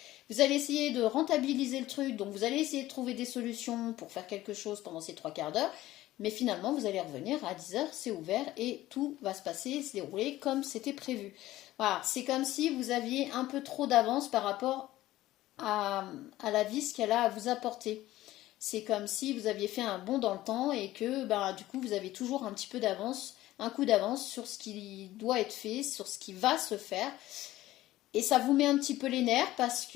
Vous allez essayer de rentabiliser le truc, donc vous allez essayer de trouver des solutions pour faire quelque chose pendant ces 3/4 d'heure, mais finalement vous allez revenir à 10h, c'est ouvert et tout va se passer, se dérouler comme c'était prévu. Voilà, c'est comme si vous aviez un peu trop d'avance par rapport à la vie, ce qu'elle a à vous apporter. C'est comme si vous aviez fait un bond dans le temps et que du coup vous avez toujours un petit peu d'avance, un coup d'avance sur ce qui doit être fait, sur ce qui va se faire. Et ça vous met un petit peu les nerfs parce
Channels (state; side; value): quieter; right; 15.7 dB